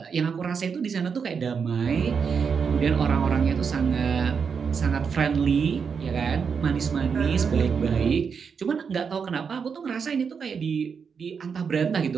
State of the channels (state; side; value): quieter; left; 6.1 dB